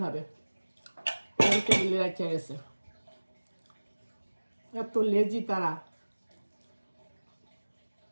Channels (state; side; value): inverted; both; correlation -1.00